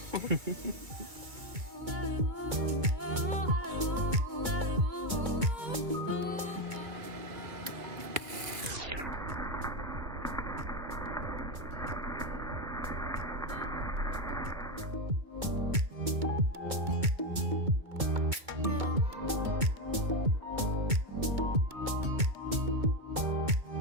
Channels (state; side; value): late; left; 2.2 ms